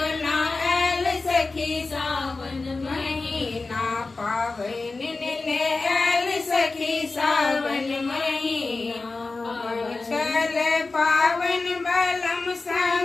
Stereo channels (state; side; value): quieter; right; 3.7 dB